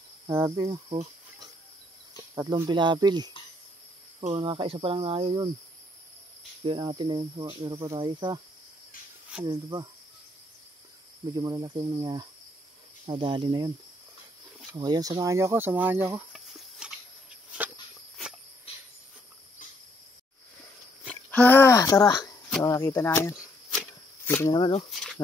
Grabe, oh. Tatlong pilapil. Oh, nakakaisa pa lang tayo yun. Kaya natin na yun. So, meron pa tayo isa. Ayun, ito pa. Medyo malalaki yung nadali na yun. So, ayan, samahan niyo ako, samahan niyo ako. Ha, tara. So, nakita na yan. Dito na naman, oh.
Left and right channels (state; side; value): normal; both; correlation 0.70